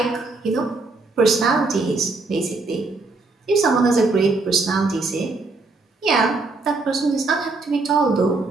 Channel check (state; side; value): quieter; left; 3.6 dB